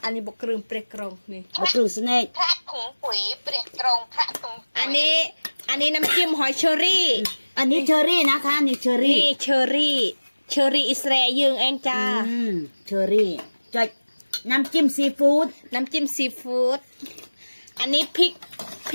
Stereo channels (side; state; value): both; inverted; correlation -1.00